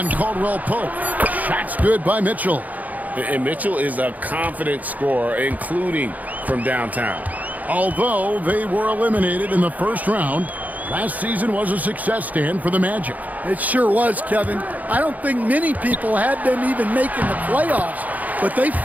Caldwell-Pope. Shot's good by Mitchell. And Mitchell is a confident scorer, including from downtown. Although they were eliminated in the first round, last season was a success stand for the Magic. It sure was, Kevin. I don't think many people had them even making the playoffs, but they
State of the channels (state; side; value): late; left; 0.078 ms